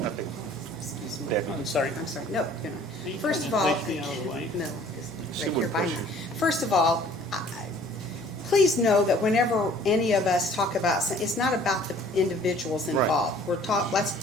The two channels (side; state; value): both; normal; correlation 0.53